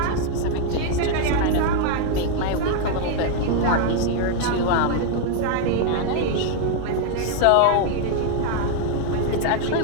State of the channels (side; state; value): both; different; correlation 0.00